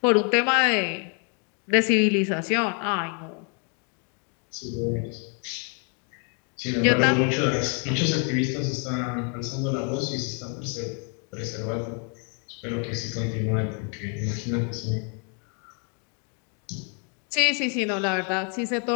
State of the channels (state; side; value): quieter; right; 39.2 dB